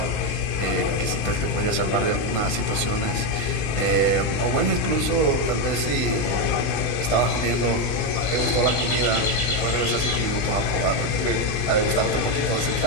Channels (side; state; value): right; late; 20 ms